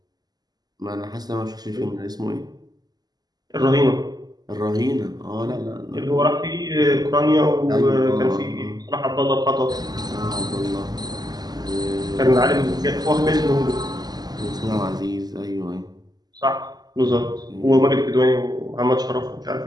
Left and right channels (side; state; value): left; late; 0.19 ms